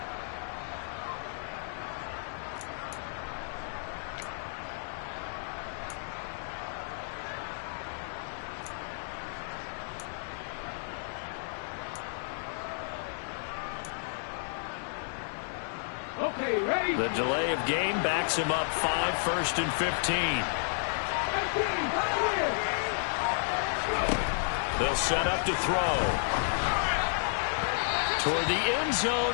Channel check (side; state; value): right; silent; 57 dB below the other